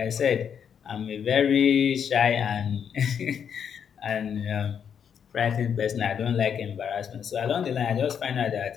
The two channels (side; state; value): right; quieter; 7.8 dB